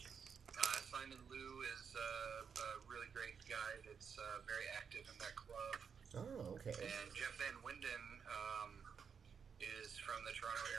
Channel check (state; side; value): quieter; left; 6.6 dB